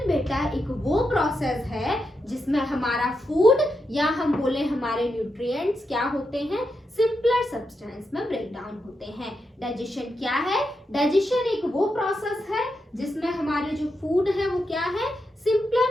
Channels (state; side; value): normal; both; correlation 0.85